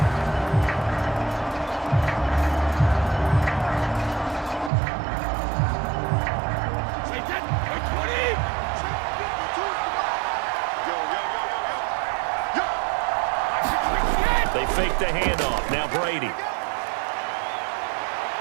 They fake the handoff. Now Brady.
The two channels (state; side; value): drops out; left; at 4.7 s